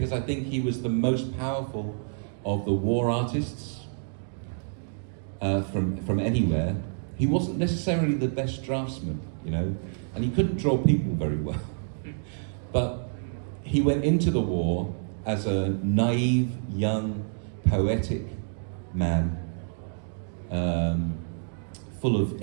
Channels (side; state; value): left; silent; digital silence